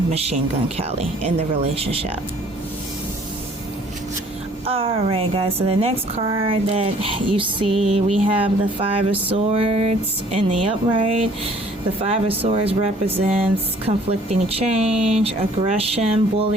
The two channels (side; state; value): both; normal; correlation 0.56